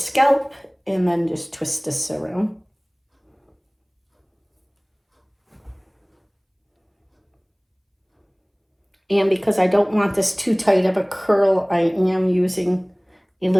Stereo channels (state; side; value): identical; both; correlation 1.00